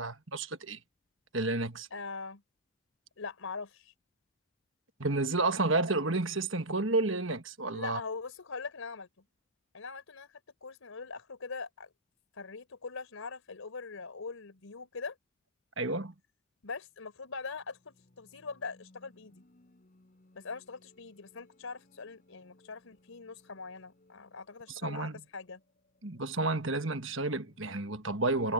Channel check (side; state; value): both; normal; correlation -0.12